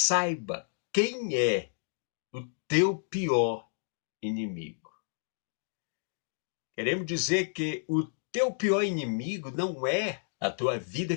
quem é o teu pior inimigo. Queremos dizer que o teu pior inimigo não é a tua vida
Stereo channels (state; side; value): silent; right; digital silence